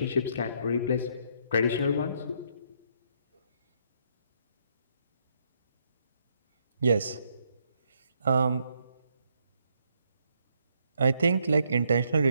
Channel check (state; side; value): inverted; both; correlation -0.73